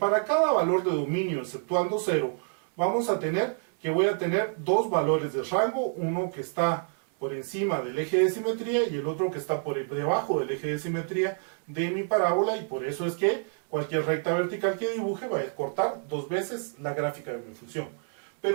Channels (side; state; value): left; silent; 59 dB below the other